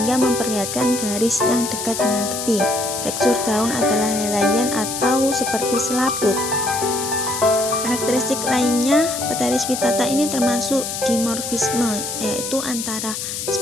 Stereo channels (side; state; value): left; noise; hiss, 5 dB below the sound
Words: memperlihatkan garis yang dekat dengan tepi. Tekstur daun adalah helaian atau seperti selaput. Karakteristik lainnya, Pteris vittata ini termasuk dimorfisme, yaitu antara